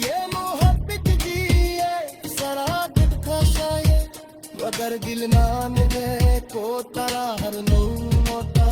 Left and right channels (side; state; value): both; identical; correlation 1.00